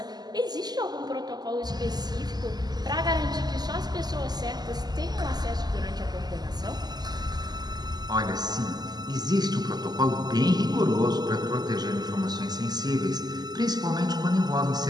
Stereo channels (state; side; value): late; left; 0.20 ms